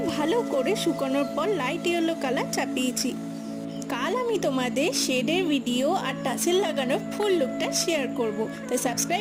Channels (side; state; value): both; identical; correlation 1.00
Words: ভালো করে শুকানোর পর লাইট ইয়েলো কালার চাপিয়েছি। কাল আমি তোমাদের শেডের ভিডিও আর টাসেল লাগানোর ফুল লুকটা শেয়ার করব, তাই